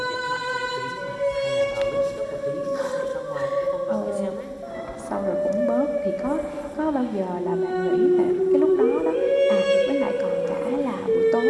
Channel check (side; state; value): both; identical; correlation 1.00